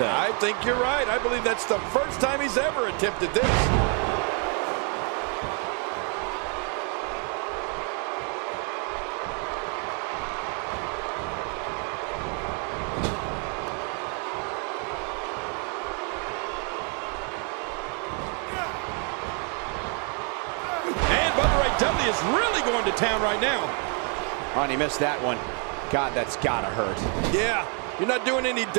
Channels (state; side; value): quieter; left; 38.8 dB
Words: I think you're right. I believe that's the first time he's ever attempted this. W is really going to town right now. Oh, and he missed that one. God, that's gotta hurt. Yeah, you're not doing any